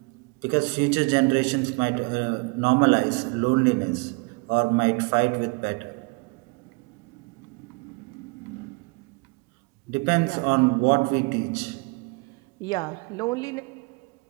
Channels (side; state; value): left; quieter; 29.2 dB